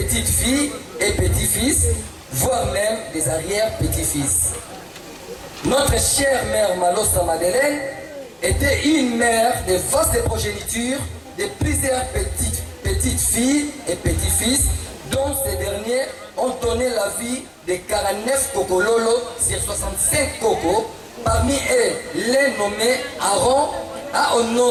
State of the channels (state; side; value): identical; both; correlation 1.00